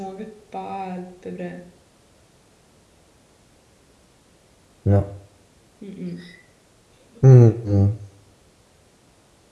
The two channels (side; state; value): both; identical; correlation 1.00